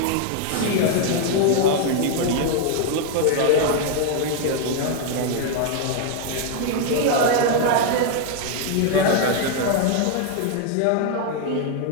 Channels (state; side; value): different; both; correlation 0.00